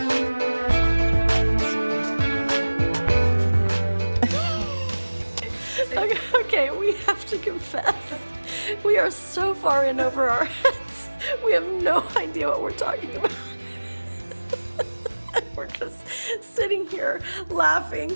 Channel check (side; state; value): both; inverted; correlation -1.00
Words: Okay, we have to confess. We are so far in over our heads. We have no idea what we're talking about. We're just sitting here laughing.